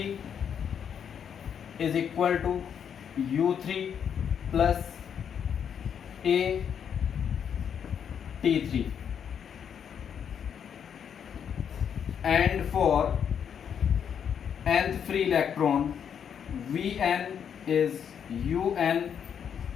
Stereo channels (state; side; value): quieter; right; 8.0 dB